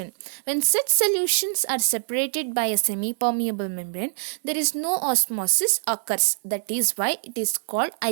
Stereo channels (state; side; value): silent; left; 61 dB below the other